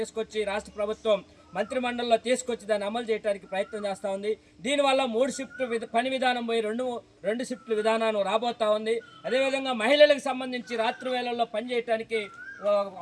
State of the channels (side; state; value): both; identical; correlation 1.00